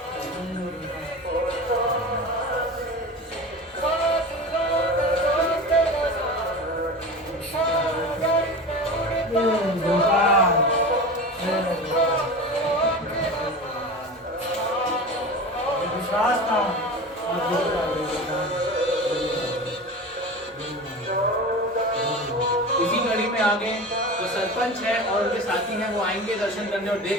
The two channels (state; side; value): normal; both; correlation 0.31